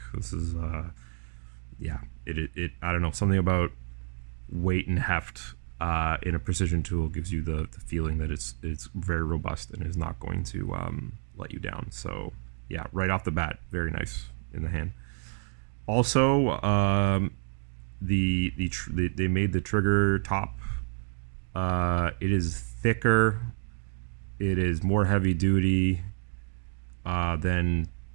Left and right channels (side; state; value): left; silent; 58 dB below the other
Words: This is yeah. It I don't know, something about weight and heft in a precision tool gives you the feeling that it's very robust and is not going to let you down. So yeah, right off the bat, very nice in the hand. Also, they made the trigger top. It is thicker. It is more heavy duty than